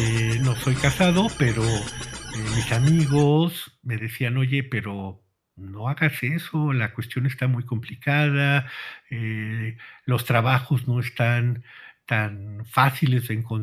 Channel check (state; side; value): identical; both; correlation 1.00